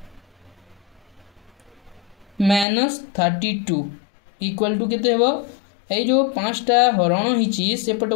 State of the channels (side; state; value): right; drops out; at 2.7 s